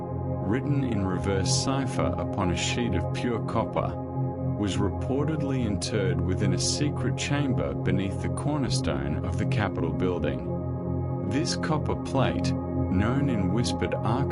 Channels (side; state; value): both; identical; correlation 1.00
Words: in reverse cipher upon a sheet of pure copper, was reportedly interred within a secret chamber beneath the cornerstone of the Capitol building. This copper plate, known in whispered